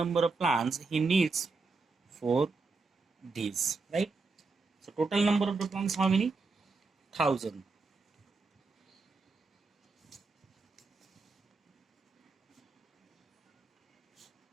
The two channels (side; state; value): left; quieter; 4.0 dB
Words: of plants he needs for these, right? So total number of the plants how many? 1,000.